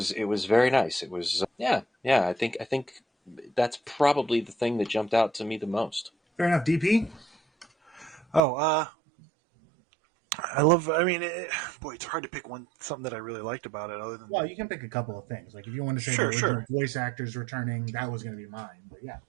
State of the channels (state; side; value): drops out; left; at 8.4 s